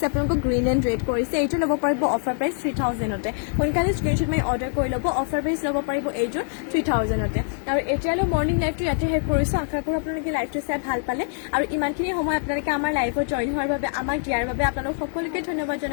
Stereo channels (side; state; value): right; silent; digital silence